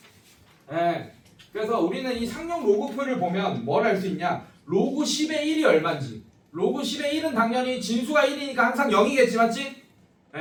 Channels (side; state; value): both; identical; correlation 1.00